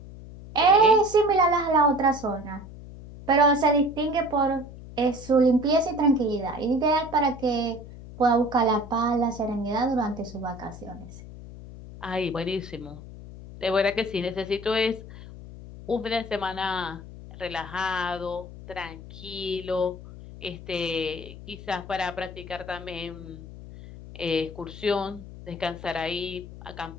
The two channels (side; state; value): left; noise; hum, 15 dB below the sound